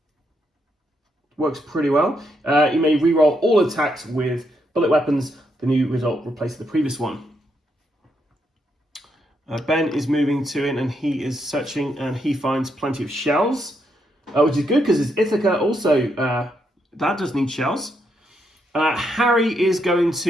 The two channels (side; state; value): both; normal; correlation 0.78